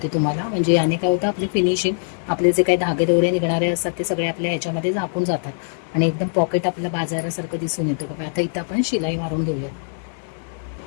तुम्हाला, म्हणजे याने काय होतं आपली फिनिशिंग, आपले जे काही धागे दोरे निघणारे असतात ते सगळे आपल्या ह्याच्यामध्ये झाकून जातात आणि एकदम पॉकेट आपलं बाजारासारखं दिसून येतं. बघा आता इथं आपण शिलाई मारून घेऊयात.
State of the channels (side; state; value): right; silent; digital silence